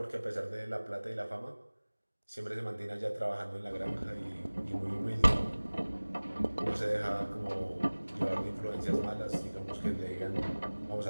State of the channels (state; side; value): inverted; both; correlation -1.00